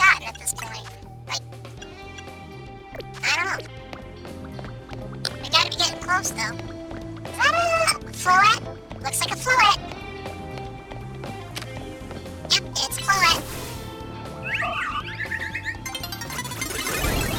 at this point? Like, I don't know. We gotta be getting close, though. Is that a floette? Looks like a floette. Yep, it's a floette.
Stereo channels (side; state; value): both; identical; correlation 1.00